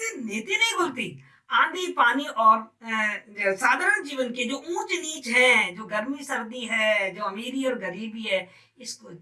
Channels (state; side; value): identical; both; correlation 1.00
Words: नीति नहीं खुलती, आंधी पानी और साधारण जीवन के जो ऊंच नीच है, जो गर्मी सर्दी है, जो अमीरी और गरीबी है, इसको